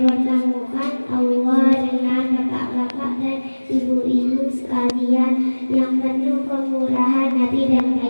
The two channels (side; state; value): both; inverted; correlation -1.00